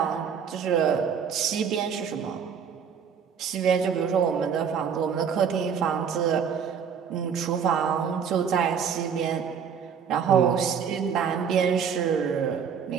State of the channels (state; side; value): quieter; left; 7.2 dB